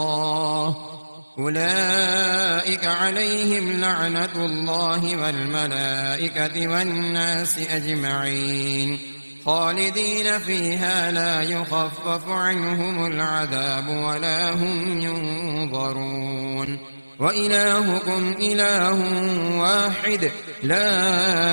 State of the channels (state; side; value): inverted; both; correlation -1.00